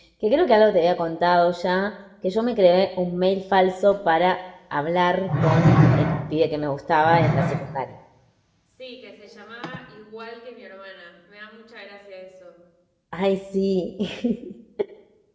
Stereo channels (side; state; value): both; identical; correlation 1.00